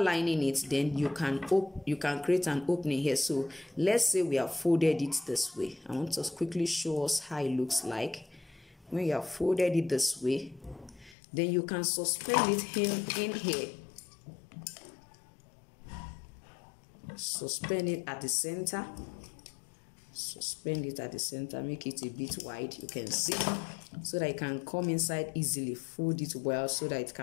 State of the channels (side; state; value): right; drops out; at 11.2 s